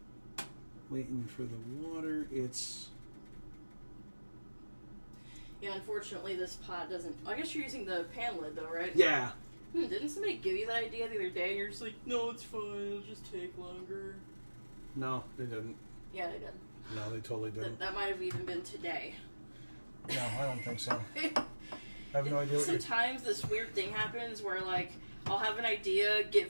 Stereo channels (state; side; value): inverted; both; correlation -1.00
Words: waiting for the water. It's... Yeah, unfortunately this pot doesn't... I guess you're using the pan lid though, right? Yeah. Didn't somebody give you that idea the other day? And you're just like, no, it's fine. It'll just take longer. No, they didn't. Yeah, they did. No, they totally didn't. That might have even been today. No, I don't think so. I have no idea what Sometimes this weird thing happens where, like, I'll have an idea, get